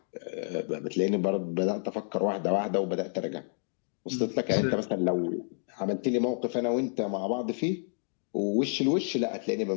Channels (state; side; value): silent; right; digital silence